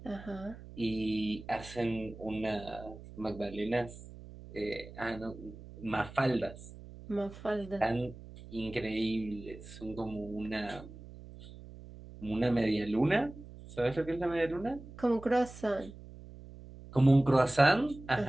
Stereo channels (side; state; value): right; noise; hum, 16 dB below the sound